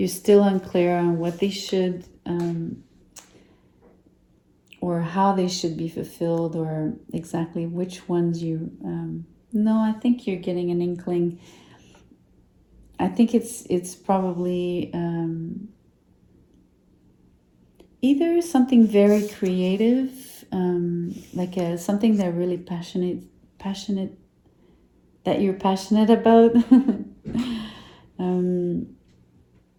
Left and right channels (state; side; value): identical; both; correlation 1.00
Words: still unclear on what they should or how they should be fulfilled, or exactly which ones you no, I think you're getting an inkling. I think it's probably either something very creative, like something that really passionate that you're passionate about,